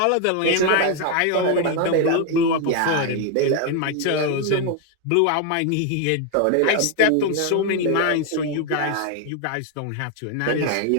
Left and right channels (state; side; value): different; both; correlation 0.01